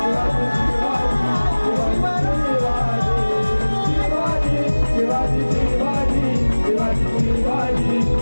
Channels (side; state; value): both; inverted; correlation -1.00